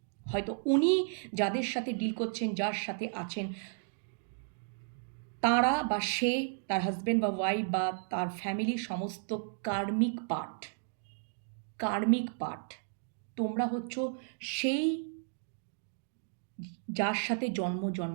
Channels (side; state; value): left; silent; digital silence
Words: হয়তো উনি যাদের সাথে ডিল করছেন, যার সাথে আছেন, তারা বা সে, তার হাজব্যান্ড বা ওয়াইফ বা তার ফ্যামিলি সমস্ত কার্মিক পার্ট। তোমরা হচ্ছ সেই যার সাথে